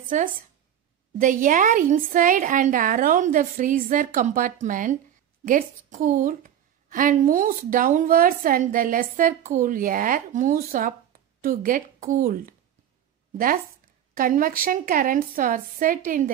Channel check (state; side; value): quieter; left; 10.2 dB